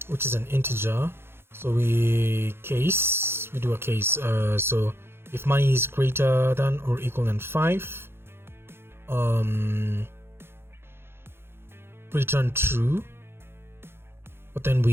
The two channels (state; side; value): late; left; 0.11 ms